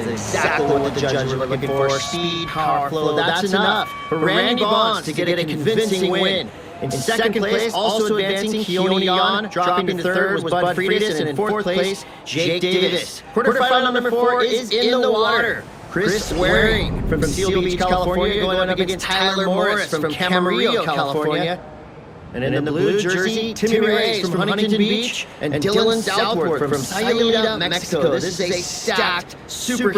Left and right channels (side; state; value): both; identical; correlation 1.00